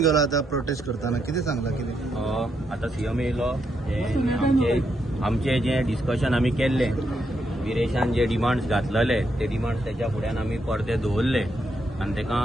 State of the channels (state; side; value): normal; both; correlation 0.79